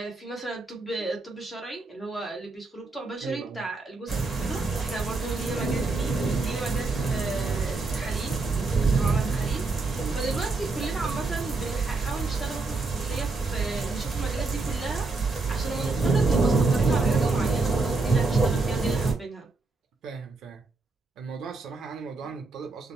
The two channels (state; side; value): quieter; left; 3.7 dB